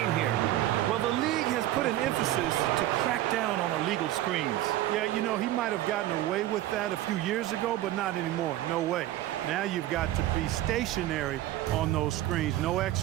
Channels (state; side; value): quieter; left; 14.4 dB